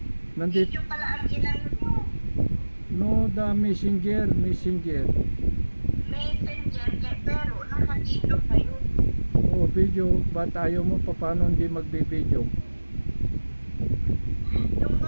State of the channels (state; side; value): inverted; both; correlation -1.00